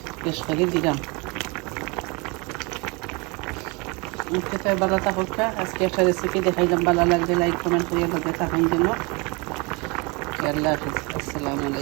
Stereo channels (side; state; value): left; quieter; 28.3 dB